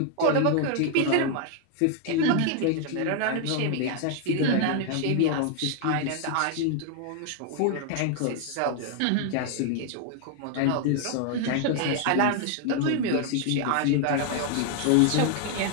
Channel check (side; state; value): both; different; correlation 0.00